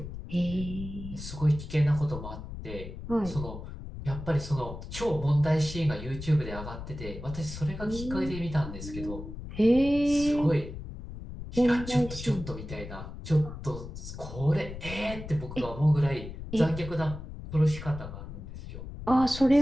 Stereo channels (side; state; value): left; noise; rumble, 10 dB below the sound